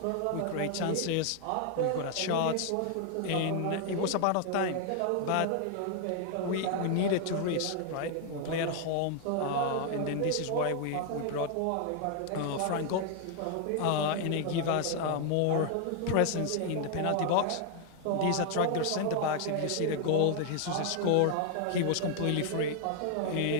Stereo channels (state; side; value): different; both; correlation 0.00